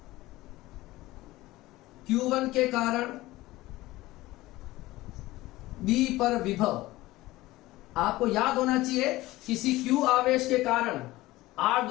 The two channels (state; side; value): quieter; right; 18.2 dB